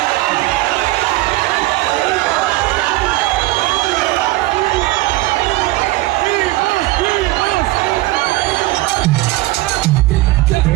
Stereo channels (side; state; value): left; quieter; 19.0 dB